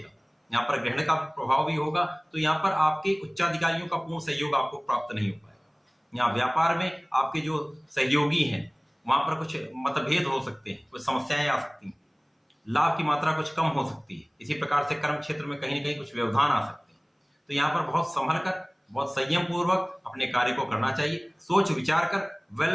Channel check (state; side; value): identical; both; correlation 1.00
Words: यहाँ पर ग्रहण का प्रभाव भी होगा, तो यहाँ पर आपके उच्चाधिकारियों का पूर्ण सहयोग आपको प्राप्त नहीं हो पाएगा। यहाँ व्यापार में आपके जो सहयोगी हैं वहां पर कुछ मतभेद हो सकते हैं, कुछ समस्याएं आ सकती हैं, लाभ की मात्रा कुछ कम हो सकती है। इसी प्रकार से कर्म क्षेत्र में कहीं न कहीं कुछ व्यवधान आ सकते हैं। तो यहाँ पर बहुत संभल कर, बहुत संयम पूर्वक अपने कार्य को करना चाहिए। सोच विचार कर,